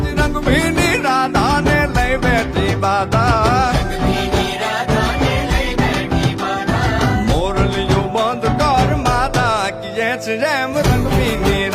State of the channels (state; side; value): identical; both; correlation 1.00